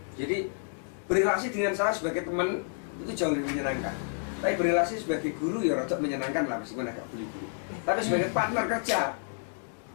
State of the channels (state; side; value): silent; right; digital silence